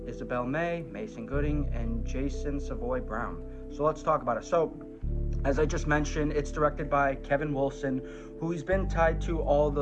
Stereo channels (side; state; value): both; identical; correlation 1.00